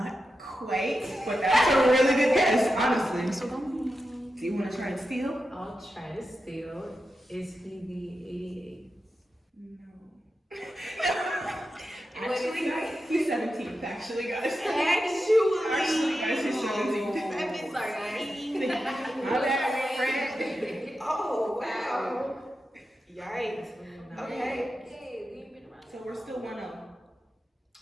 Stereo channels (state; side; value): normal; both; correlation 0.90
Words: quite, but that's a really good guess, honestly. Do you want to try and steal? I'll try to steal. Is he the 88? No. Actually, guys, he's 17th, actually, guys. Actually, guys, he's 17th. Sorry, guys. My bad, friend. Oh, wow. Yikes. Okay. Hey, we ain't been around. So we're still 1-0.